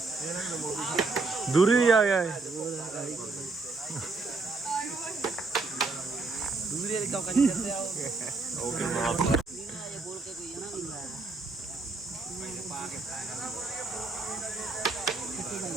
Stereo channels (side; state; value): left; quieter; 3.8 dB